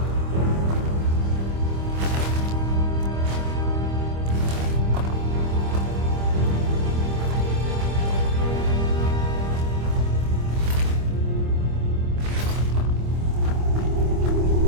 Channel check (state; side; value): late; left; 25 ms